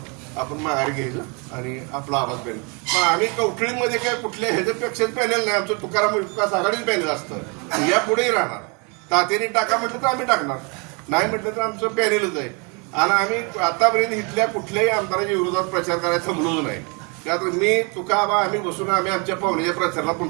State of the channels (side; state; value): left; quieter; 32.7 dB